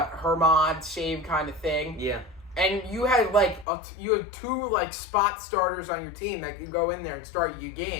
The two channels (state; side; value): drops out; right; at 3.7 s